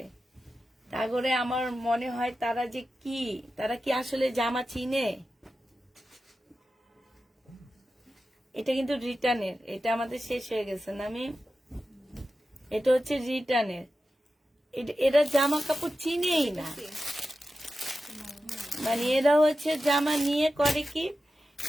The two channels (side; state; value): both; normal; correlation 0.92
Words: তারপরে আমার মনে হয় তারা কি আসলে জামা চিনে? এটা কিন্তু রিটার্নের, এটা আমাদের শেষ হয়ে গেছে না আমি, এটা হচ্ছে রিটার্নের। এরা জামা কাপড় চিনেই না, মানে এরা হচ্ছে জামা নিয়ে করে কি